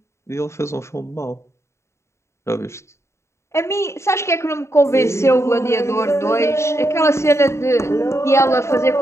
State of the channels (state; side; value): late; right; 0.13 ms